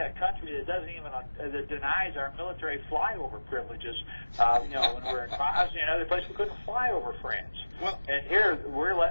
country that doesn't even, that denies our military flyover privileges, when we're in Bosnia and other places, we couldn't fly over France. Well, and here we're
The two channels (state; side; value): inverted; both; correlation -1.00